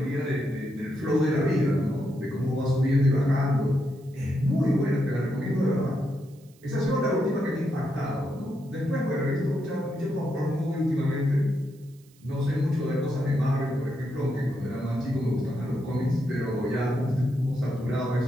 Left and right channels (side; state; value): right; noise; hiss, 30 dB below the sound